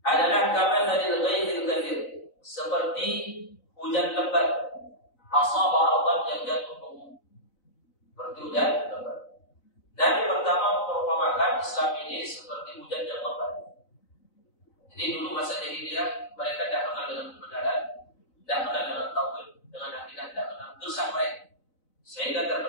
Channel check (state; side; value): late; right; 4.0 ms